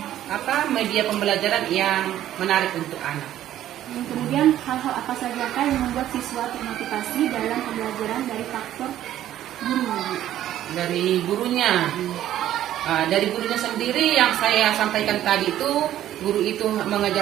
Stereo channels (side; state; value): left; quieter; 12.4 dB